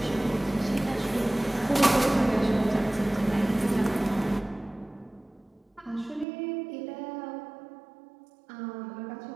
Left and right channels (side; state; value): left; drops out; at 6.2 s